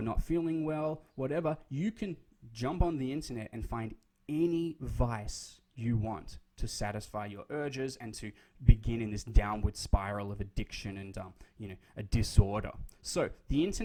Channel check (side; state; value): both; identical; correlation 1.00